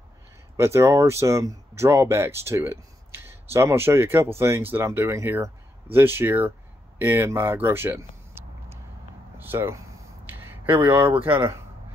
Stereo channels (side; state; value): both; normal; correlation 0.80